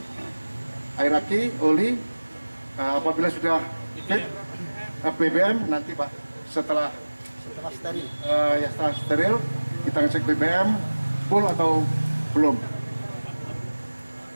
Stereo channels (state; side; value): inverted; both; correlation -1.00